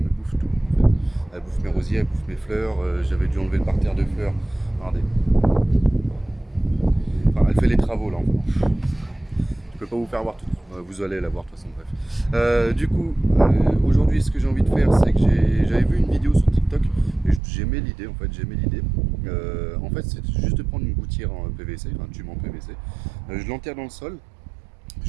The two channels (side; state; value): left; drops out; at 17.4 s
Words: me bouffe tout en fait. Elle bouffe mes rosiers, elle bouffe mes fleurs. J'avais dû enlever le parterre de fleurs. Regardez. Enfin, elle fait les travaux là. Je peux pas vous faire voir tout. Vous allez la voir de toute façon, bref. Aujourd'hui, ce que j'ai envie de faire, c'est que j'avais vu une vidéo sur TikTok et j'aimais l'idée. En fait, j'aimais l'idée. En fait, c'est juste de prendre une gouttière en PVC, un tube en PVC. Je l'enterre dans le sol.